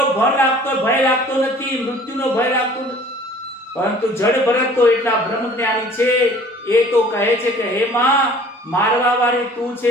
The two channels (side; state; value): both; normal; correlation 0.50